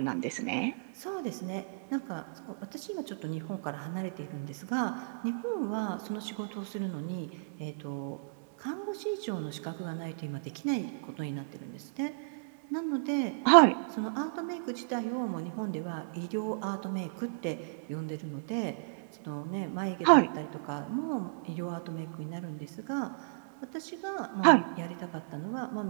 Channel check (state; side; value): quieter; left; 36.8 dB